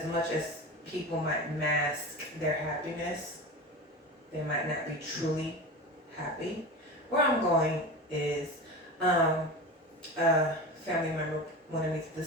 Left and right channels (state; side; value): normal; both; correlation 0.29